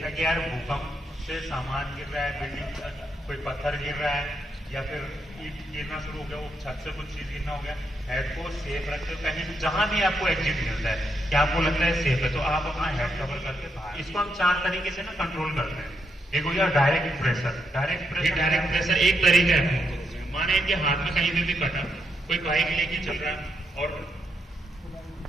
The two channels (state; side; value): normal; both; correlation 0.80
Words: कि यार भूकंप से सामान गिर रहा है, बिल्डिंग कोई पत्थर गिर रहा है या फिर ईंट गिरना शुरू हो गया, वो छत से कुछ चीज गिरना हो गया, हेड को सेफ रखते हो। कहीं जहां भी आपको एग्जिट मिलता है कि आपको लगता है सेफ है तो आप अपना हेड कवर करके बाहर। इसको हम 4 तरीके से ना कंट्रोल करते हैं। एक हो गया डायरेक्ट प्रेशर। डायरेक्ट प्रेशर एक तरीका है। माने कि हाथ में कहीं भी कटा, कोई बाइक लेके चल रहा है और